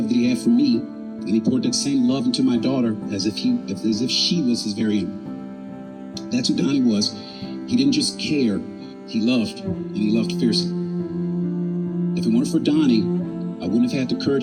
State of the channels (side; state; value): both; identical; correlation 1.00